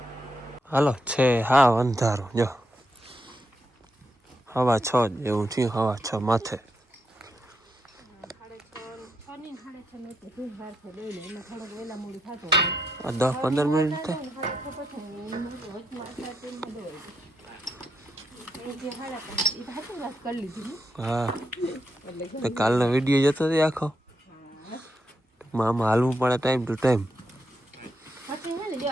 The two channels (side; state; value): both; normal; correlation 0.82